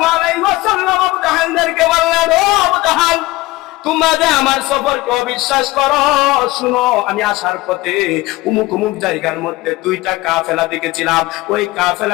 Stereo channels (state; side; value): quieter; right; 19.6 dB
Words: আলাইহি ওয়াসাল্লাম আবু জাহেলকে বললেন, ও আবু জাহেল, তোমরা যে আমার সফরকে অবিশ্বাস করো, শুনো, আমি আসার পথে উমুক উমুক জায়গার মধ্যে দুইটা কাফেলা দেখেছিলাম। ওই